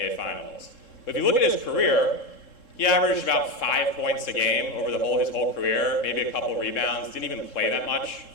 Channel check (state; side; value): late; right; 3.7 ms